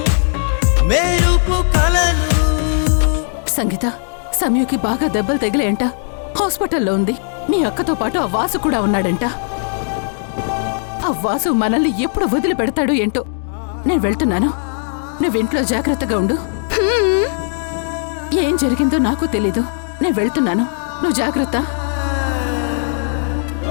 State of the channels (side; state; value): right; silent; digital silence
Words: మెరుపు కలలు. సంగీత, సమయుకి బాగా దెబ్బలు తగిలేంట. హాస్పిటల్లో ఉంది. మీ అక్కతో పాటు ఆ వాసు కూడా ఉన్నాడంట. ఆ వాసు మనల్ని ఎప్పుడు వదిలిపెడతాడు ఏంటో. నేను వెళ్తున్నాను. నువ్వింట్లో జాగ్రత్తగా ఉండు. ఏం జరిగిందో నాకు తెలీదు. నేను వెళ్తున్నాను. నువ్వు జాగ్రత్త.